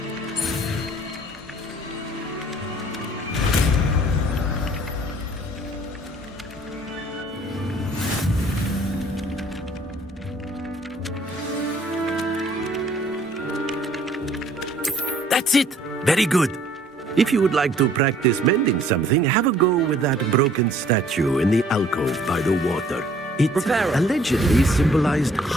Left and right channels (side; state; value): both; normal; correlation 0.58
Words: That's it. Very good. If you would like to practice mending something, have a go with that broken statue in the alcove by the water. It allegedly symbolized